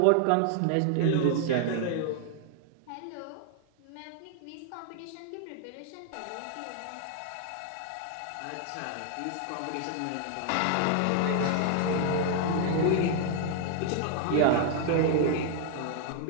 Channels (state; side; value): different; both; correlation 0.00